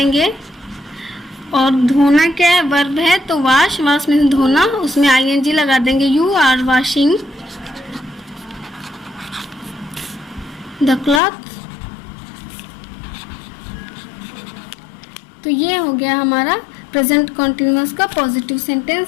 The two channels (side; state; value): right; drops out; at 11.2 s